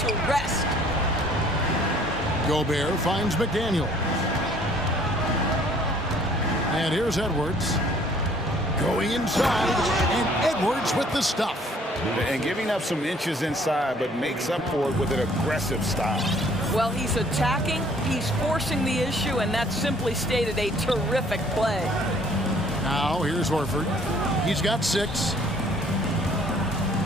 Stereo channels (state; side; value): normal; both; correlation 0.58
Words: rest. Gobert finds McDaniel. And here's Edwards. Going inside, and Edwards with the stuff. And giving up some inches inside, but makes up for it with an aggressive style. Well, he's attacking, he's forcing the issue, and that simply stated a terrific play. Now, here's Horford. He's got 6.